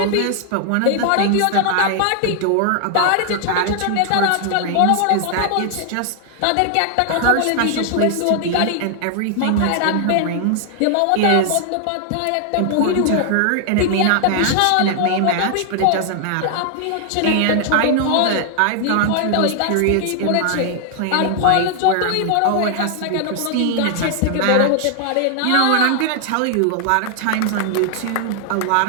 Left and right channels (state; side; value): different; both; correlation 0.00